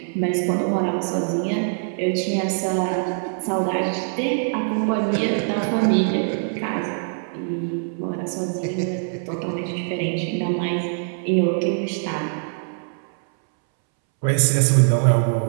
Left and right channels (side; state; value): left; silent; 62 dB below the other